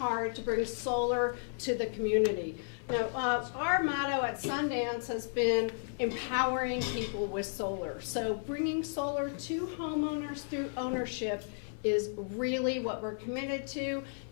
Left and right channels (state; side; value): silent; right; 55 dB below the other